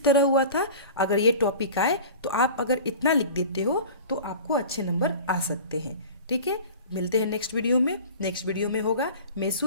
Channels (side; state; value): both; inverted; correlation -0.39